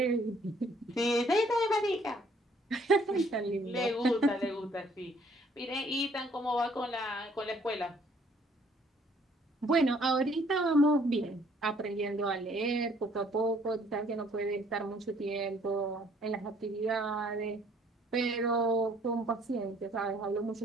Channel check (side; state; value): both; normal; correlation 0.62